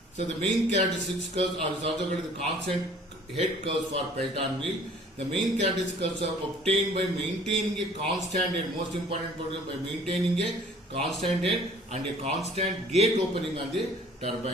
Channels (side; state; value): both; normal; correlation 0.53